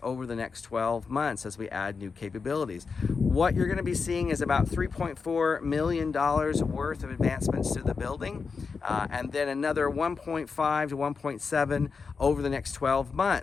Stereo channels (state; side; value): quieter; right; 5.1 dB